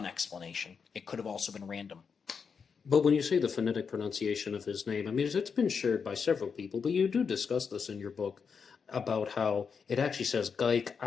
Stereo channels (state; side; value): quieter; right; 6.0 dB